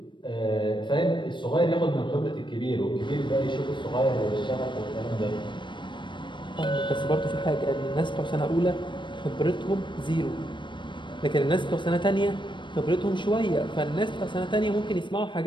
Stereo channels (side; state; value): right; late; 0.23 ms